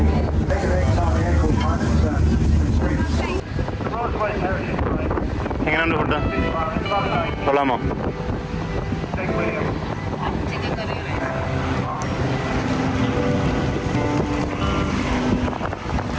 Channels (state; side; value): identical; both; correlation 1.00